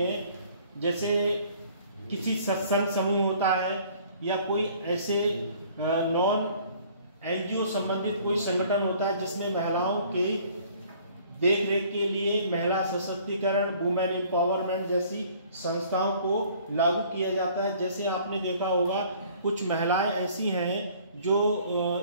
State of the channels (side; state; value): both; inverted; correlation -0.55